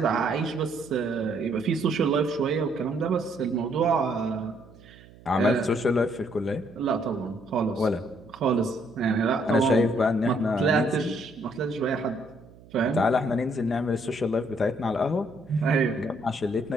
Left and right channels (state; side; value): noise; right; hum, 23 dB below the sound